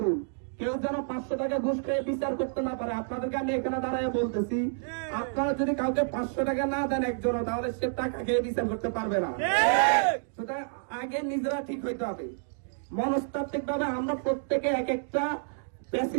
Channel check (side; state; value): left; silent; digital silence